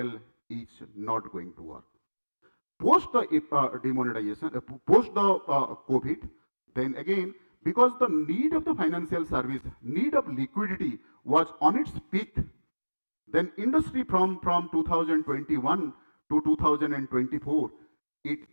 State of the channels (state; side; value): inverted; both; correlation -1.00